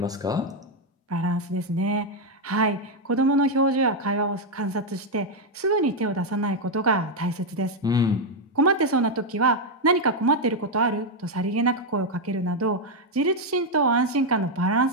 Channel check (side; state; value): both; normal; correlation 0.02